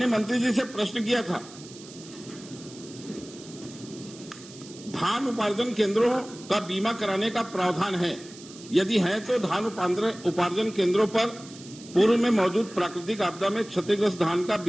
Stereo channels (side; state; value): right; noise; hiss, 18 dB below the sound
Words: मंत्री जी से प्रश्न किया था, धान उपार्जन केंद्रों का बीमा कराने का प्रावधान है, यदि है तो धान उपार्जन केंद्रों पर पूर्व में मौजूद प्राकृतिक आपदा में क्षतिग्रस्त धान का